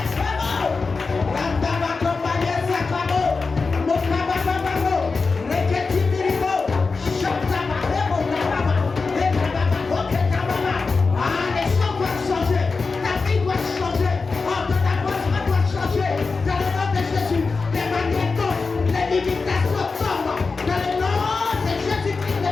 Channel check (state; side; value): quieter; right; 4.3 dB